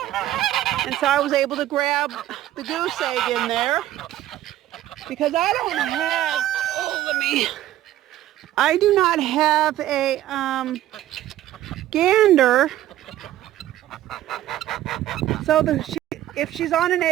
And so I was able to grab the goose egg in there. Because I don't have, I do not have a gander. So if she's on an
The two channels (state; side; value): quieter; left; 13.6 dB